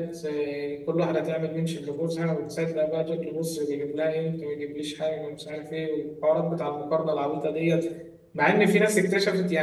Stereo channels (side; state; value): both; identical; correlation 1.00